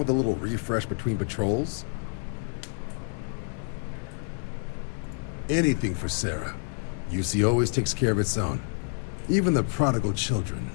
a little refresh between patrols. Anything for Sarah. UC always takes care of its own. Even the prodigal children.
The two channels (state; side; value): silent; right; 59 dB below the other